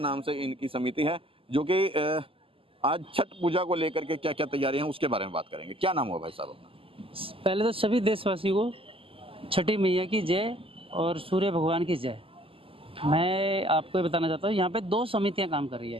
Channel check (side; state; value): left; late; 0.26 ms